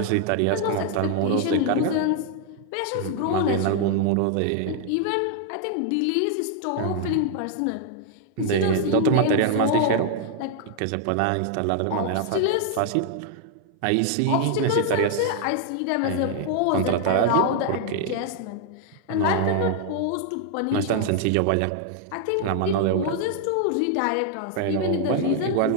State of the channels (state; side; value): different; both; correlation 0.00